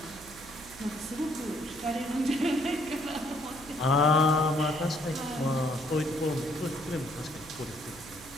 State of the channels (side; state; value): right; noise; hum, 19 dB below the sound